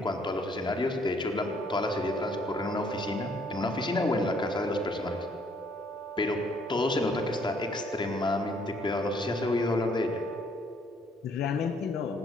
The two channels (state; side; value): normal; both; correlation 0.65